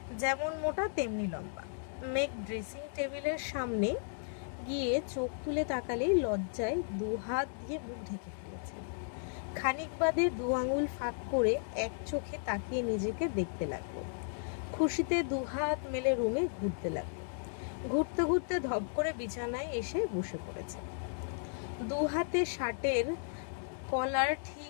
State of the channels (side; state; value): right; silent; digital silence